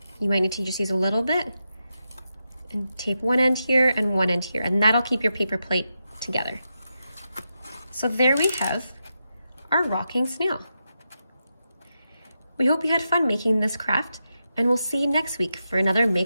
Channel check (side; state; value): both; inverted; correlation -0.87